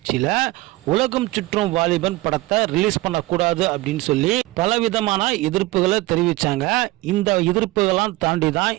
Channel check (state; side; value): quieter; left; 19.7 dB